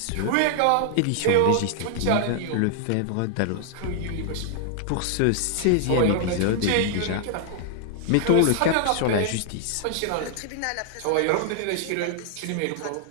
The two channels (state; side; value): different; both; correlation -0.01